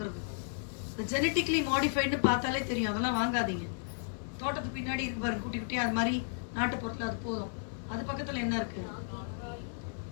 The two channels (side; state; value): right; silent; digital silence